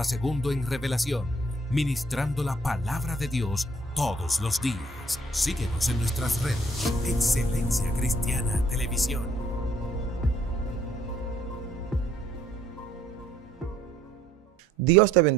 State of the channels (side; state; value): both; normal; correlation 0.63